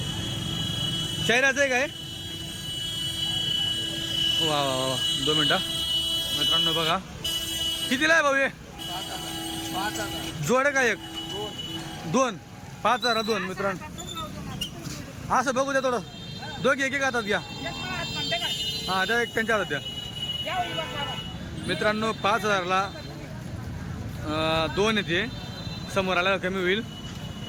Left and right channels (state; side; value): identical; both; correlation 1.00